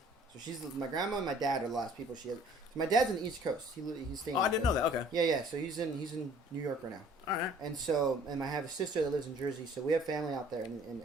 So my grandma and my dad are the last people she has. So my dad's in the East Coast. He's staying. Oh, I didn't know that. Okay. Yeah. So he's in New York right now. All right. And I have a sister that lives in Jersey. So we have family out there, and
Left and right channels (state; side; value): normal; both; correlation 0.54